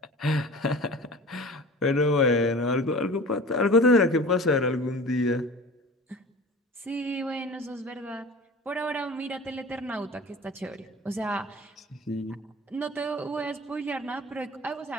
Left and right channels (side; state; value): both; normal; correlation 0.38